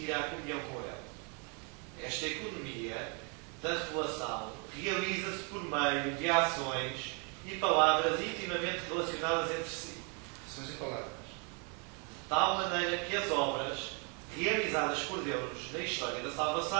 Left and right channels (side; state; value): left; quieter; 35.8 dB